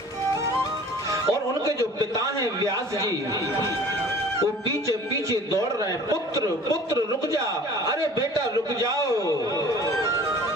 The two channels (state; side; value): normal; both; correlation 0.47